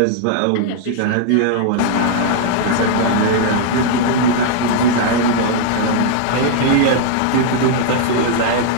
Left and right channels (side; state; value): both; different; correlation -0.01